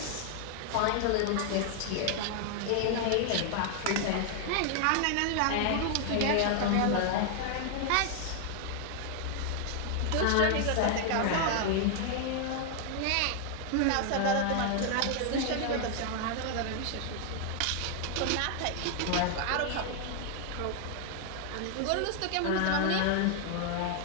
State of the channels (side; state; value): both; different; correlation 0.00